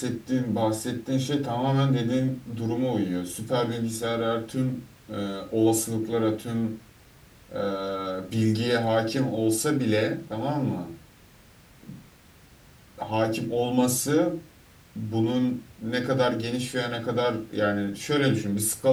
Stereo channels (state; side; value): identical; both; correlation 1.00